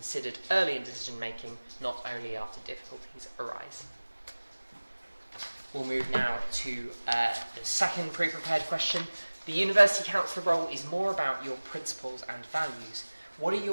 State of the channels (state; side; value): inverted; both; correlation -1.00